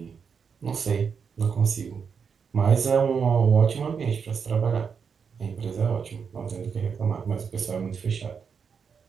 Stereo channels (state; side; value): quieter; left; 6.3 dB